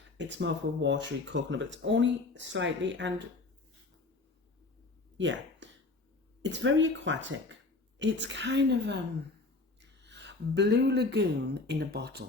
it's more of a watery coconut, but it's only slightly, and yeah, it's very aquatic. It's kind of Blue Lagoon in a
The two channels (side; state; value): right; quieter; 3.5 dB